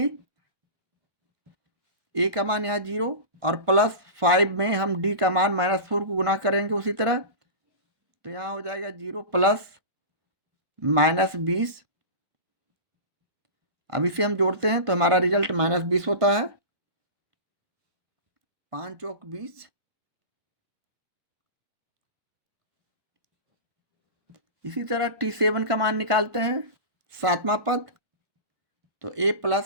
a का मान यहाँ 0 और +5 में हम d का मान -4 को गुना करेंगे उसी तरह, तो यहाँ हो जाएगा 0 + -20। अब इसे हम जोड़ते हैं तो हमारा रिजल्ट -20 होता है, 5 चौक 20। इसी तरह T7 का मान निकालते हैं, 7वां पद, तो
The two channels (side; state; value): left; late; 1.1 ms